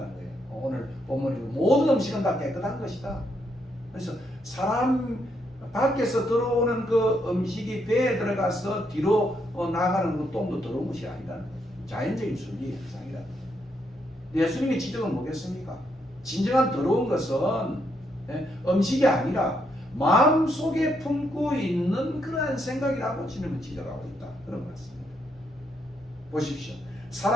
거예요. 오늘 본문에 모든 음식은 다 깨끗한 것이다. 그래서 사람 밖에서 들어오는 그 음식이 배에 들어가서 뒤로 나가는 그 똥도 더러운 것이 아니라는 거예요. 자연적인 순리의 현상이라는 거예요. 예수님의 지적은 뭐겠습니까? 진정한 더러운 것은 음식이 아니라 마음속에 품고 있는 그러한 생각이라고 주님은 지적하고 있다. 그런 말씀입니다. 보십시오.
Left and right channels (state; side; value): normal; both; correlation 0.77